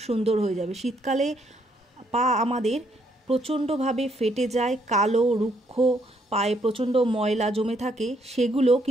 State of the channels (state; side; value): normal; both; correlation 0.71